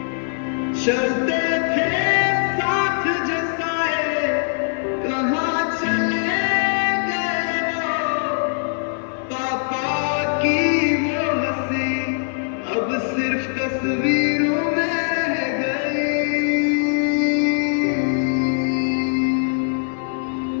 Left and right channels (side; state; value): right; silent; 65 dB below the other